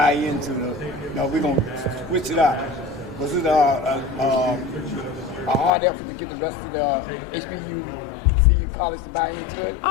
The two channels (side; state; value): right; drops out; at 5.7 s